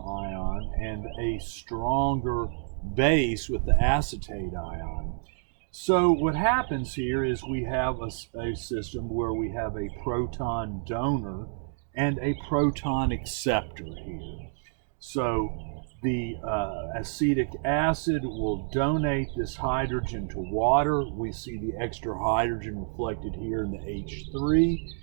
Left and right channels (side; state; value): left; silent; 59 dB below the other